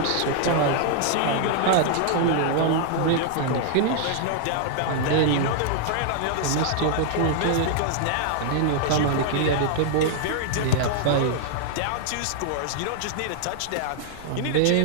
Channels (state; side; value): different; both; correlation -0.01